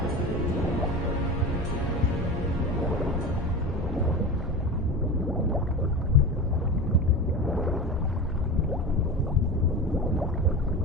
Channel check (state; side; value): normal; both; correlation 0.28